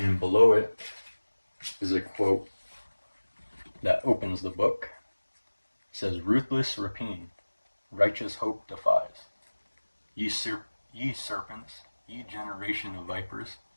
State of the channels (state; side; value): inverted; both; correlation -1.00